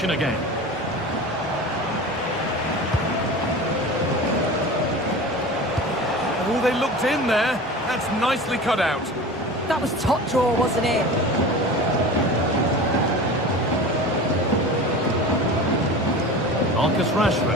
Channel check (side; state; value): both; normal; correlation 0.34